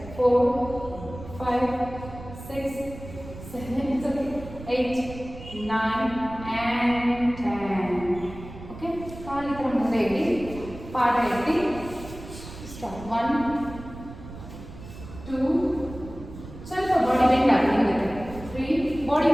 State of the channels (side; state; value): right; noise; rumble, 14 dB below the sound